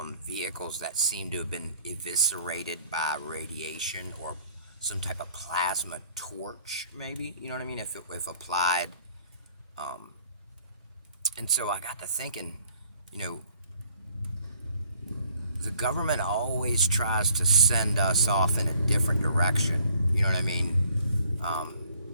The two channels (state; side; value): inverted; both; correlation -0.60